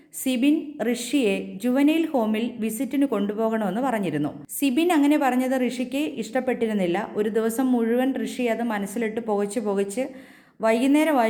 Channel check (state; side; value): identical; both; correlation 1.00